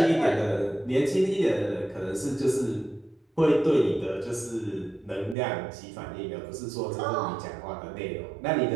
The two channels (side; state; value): left; drops out; at 5.4 s